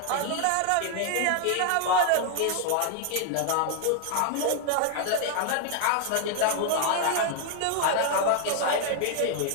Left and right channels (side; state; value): both; different; correlation 0.00